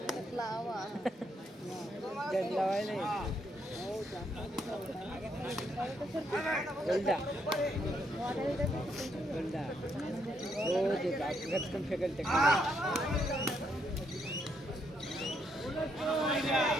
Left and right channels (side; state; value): both; normal; correlation 0.75